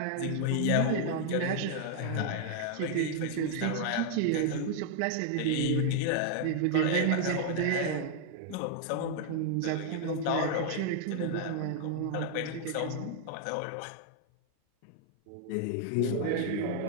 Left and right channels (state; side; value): different; both; correlation 0.00